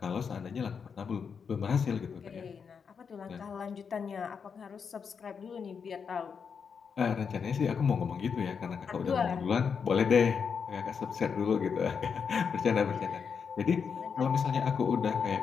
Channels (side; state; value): right; quieter; 6.3 dB